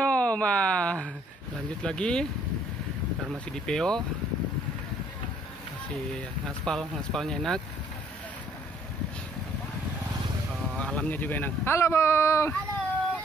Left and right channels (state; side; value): normal; both; correlation 0.62